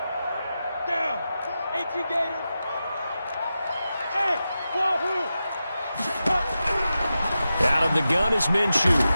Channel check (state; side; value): inverted; both; correlation -0.91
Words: Down. 18 Gators. Hey, wahoo. Out of the gun is Minshew.